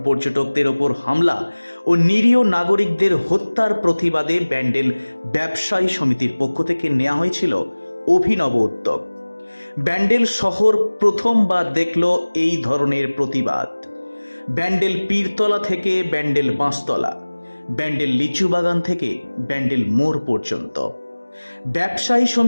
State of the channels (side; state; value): both; inverted; correlation -1.00